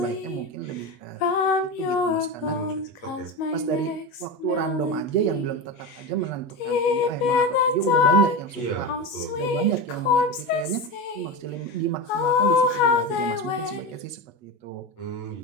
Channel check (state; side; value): late; right; 8.2 ms